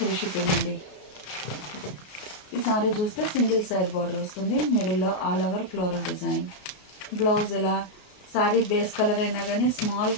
షిప్పింగ్ అండి. ఈ సారీ చూస్తే సింగిల్ సైడ్ బార్డర్ వస్తుంది. మిడిల్లో all over floral design. Blouse ఇలా సారీ బేస్ కలర్ అయినా కానీ స్మాల్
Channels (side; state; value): right; late; 33 ms